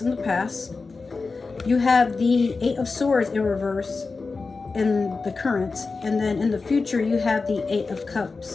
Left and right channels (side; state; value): right; quieter; 4.2 dB